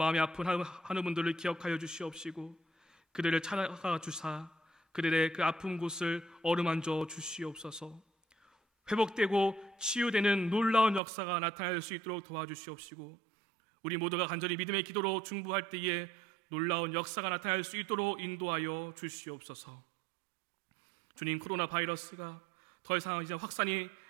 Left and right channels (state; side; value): drops out; left; at 11.0 s